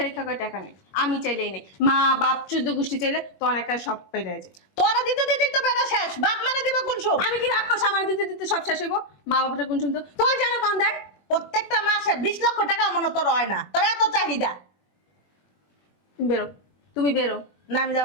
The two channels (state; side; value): late; right; 21 ms